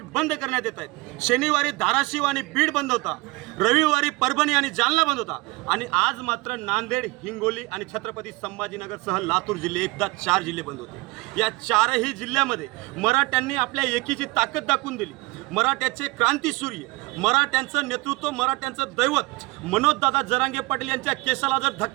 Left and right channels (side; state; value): left; quieter; 23.8 dB